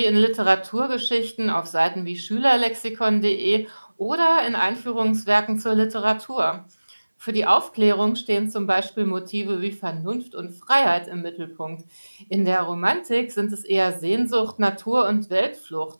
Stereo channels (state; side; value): inverted; both; correlation -1.00